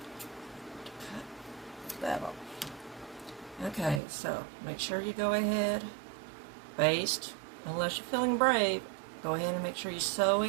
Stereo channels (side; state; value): left; drops out; at 4.0 s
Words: Cut that off. Okay, so make sure you go ahead, baste. Unless you're feeling brave, go ahead and make sure you sew